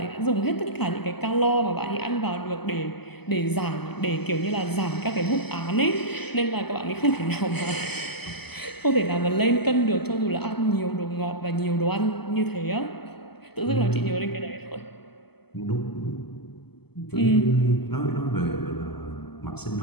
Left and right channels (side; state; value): right; late; 0.97 ms